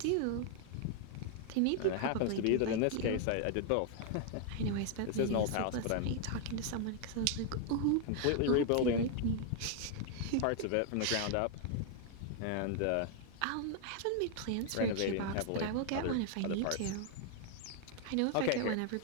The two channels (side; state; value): both; different; correlation 0.00